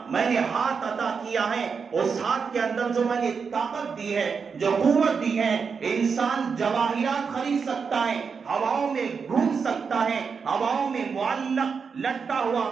میں نے ہاتھ عطا کیا ہے، اس ہاتھ کے اندر جو میں نے طاقت دی ہے، جو قوت دی ہے، انسان جواہرات خرید سکتا ہے، ہواؤں میں گھوم سکتا ہے، ہواؤں میں معلق لٹکا ہوا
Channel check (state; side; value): quieter; left; 5.7 dB